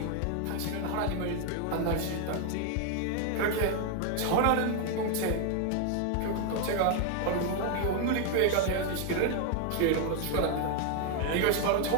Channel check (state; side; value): different; both; correlation 0.00